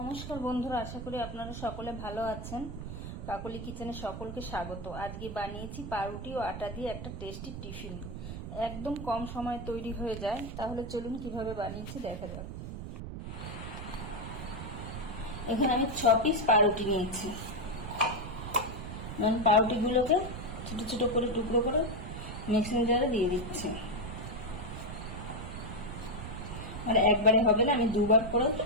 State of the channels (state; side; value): noise; right; rumble, 8 dB below the sound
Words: বন্ধুরা, আশা করি আপনারা সকলে ভালো আছেন। কাকলি কিচেনে সকলকে স্বাগত। আজকে বানিয়েছি পাউরুটি ও আটা দিয়ে একটা টেস্টি টিফিন। একদম কম সময়ে তৈরি হয়ে যায়। তাহলে চলুন কিভাবে বানিয়েছি দেখা যাক। এখানে আমি 6 পিস পাউরুটি নিয়েছি। পাউরুটিগুলোকে ছোট ছোট করে টুকরো করে মিক্সিং জারে দিয়ে দিচ্ছি। আর একবারে হবে না, আমি দুবার করে